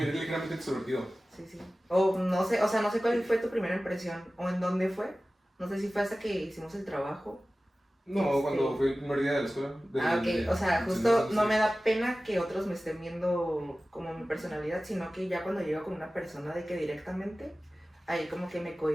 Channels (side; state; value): both; normal; correlation 0.96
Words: ligeramente extrovertido. Sí. O no sé cuál fue tu primera impresión o en dónde fue. No sé si fue hasta que hicimos el trabajo. No, cuando fue el primer día de la escuela. Ok, o sea, justo no me da pena que otros me estén viendo como mi personalidad, sino que ya cuando llego con una persona de que directamente, ahí como que me